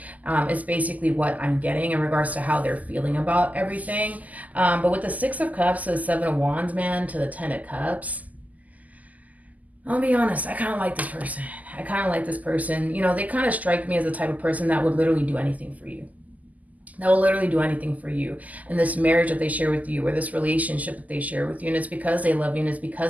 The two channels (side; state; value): left; late; 0.077 ms